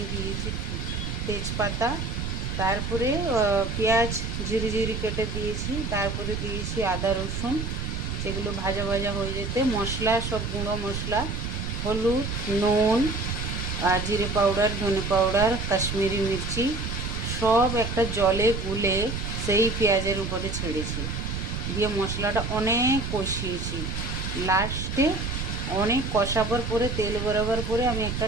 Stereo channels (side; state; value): right; noise; rumble, 4 dB below the sound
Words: দিয়েছি তেজপাতা, তারপরে পেঁয়াজ জিরি জিরি কেটে দিয়েছি, তারপরে দিয়েছি আদা রসুন, সেগুলো ভাজা ভাজা হয়ে যেতে মশলা, সব গুঁড়ো মশলা, হলুদ, নুন, আর জিরে পাউডার, ধনে পাউডার, কাশ্মীরি মির্চি সব একটা জলে গুলে সেই পেঁয়াজের উপরে ছেড়েছি, দিয়ে মশলাটা অনেক কষিয়েছি। লাস্টে অনেক কষাবার পরে, তেল বেরোবার পরে আমি একটা